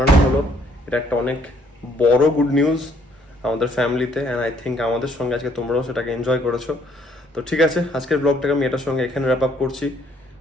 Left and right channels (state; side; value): normal; both; correlation 0.65